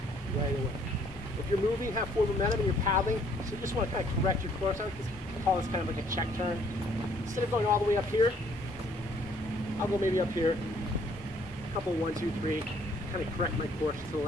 right away. If you're moving, have forward momentum, and you're paddling, so you just want to kind of correct your course. I call this kind of like a check turn. Instead of going all the way up here, I'll go maybe up here. A couple, 1, 2, 3. Kind of correct my course to the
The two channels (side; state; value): both; normal; correlation 0.63